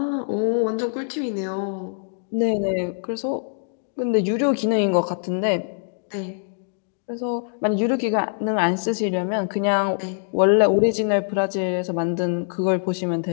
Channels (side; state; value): right; silent; digital silence